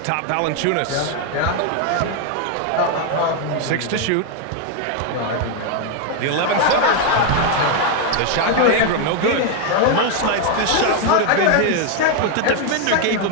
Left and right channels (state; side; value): different; both; correlation 0.01